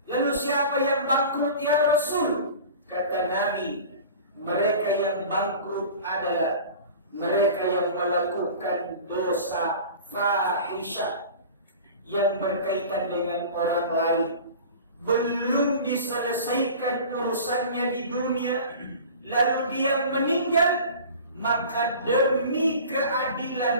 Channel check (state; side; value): inverted; both; correlation -0.39